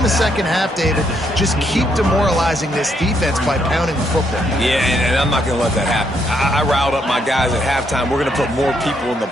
the second half, David, just keep demoralizing this defense by pounding the football. Yeah, and I'm not going to let that happen. I riled up my guys at halftime. We're going to put more people in the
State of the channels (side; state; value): both; normal; correlation 0.74